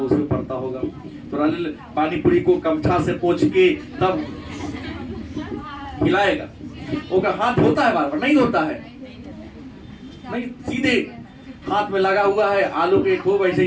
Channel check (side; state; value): both; identical; correlation 1.00